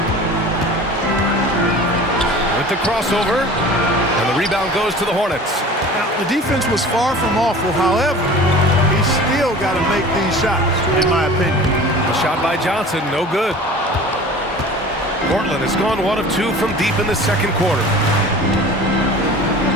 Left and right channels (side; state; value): both; normal; correlation 0.41